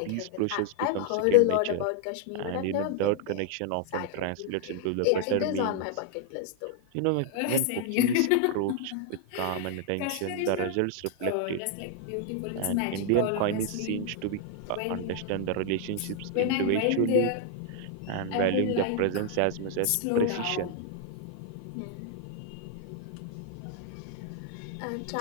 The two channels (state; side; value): different; both; correlation 0.00